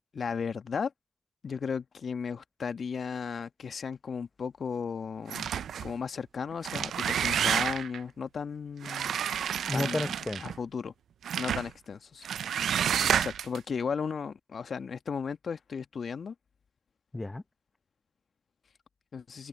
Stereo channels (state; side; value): normal; both; correlation 0.75